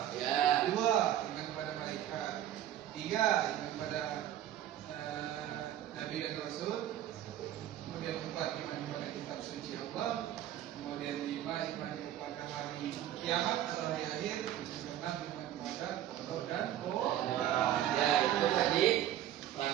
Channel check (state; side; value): quieter; left; 11.9 dB